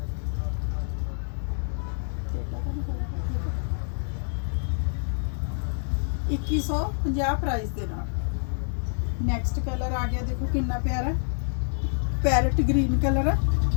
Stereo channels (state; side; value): silent; right; digital silence